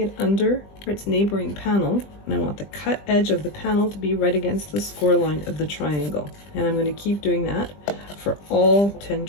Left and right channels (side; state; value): right; late; 20 ms